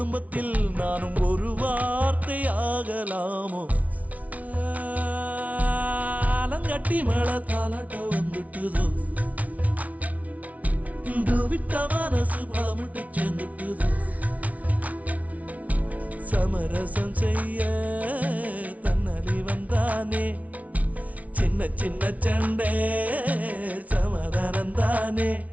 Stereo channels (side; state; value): left; late; 0.069 ms